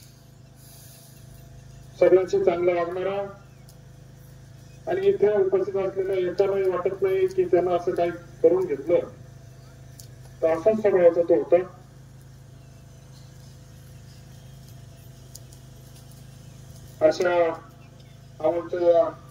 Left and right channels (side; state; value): both; identical; correlation 1.00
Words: सगळ्यांशी चांगला वागणारा आणि इथे उपस्थित असलेल्या एकालाही वाटत नाही की त्यांना असं काही करून घेतलं तर असाच स्वभावाचा तो होता. अशा आमच्या